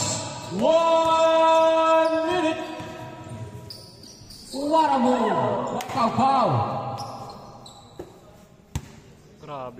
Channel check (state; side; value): identical; both; correlation 1.00